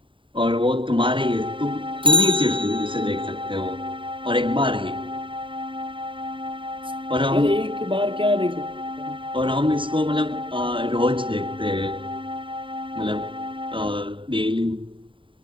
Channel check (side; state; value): left; late; 0.25 ms